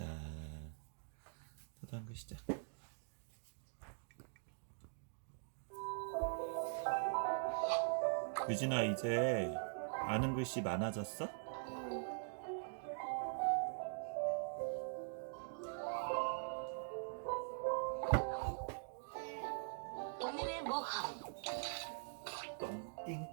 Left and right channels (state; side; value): silent; left; digital silence